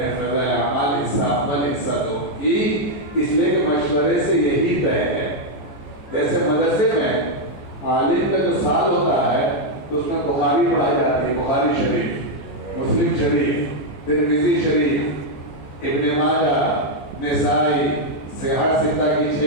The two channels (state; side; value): late; right; 14 ms